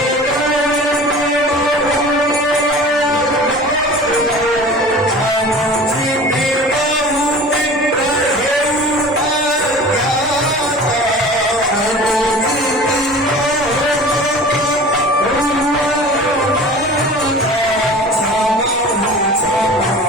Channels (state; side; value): normal; both; correlation 0.40